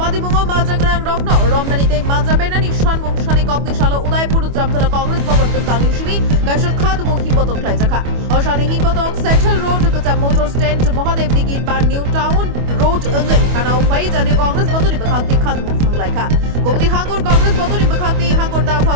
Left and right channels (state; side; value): late; left; 25 ms